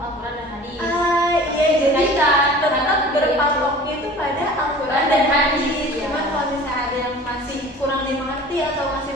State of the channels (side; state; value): both; normal; correlation 0.43